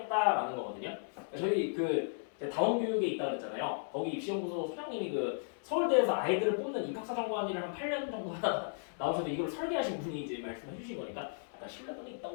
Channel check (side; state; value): right; silent; digital silence